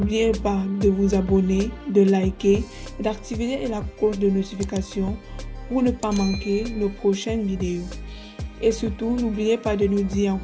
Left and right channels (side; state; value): both; identical; correlation 1.00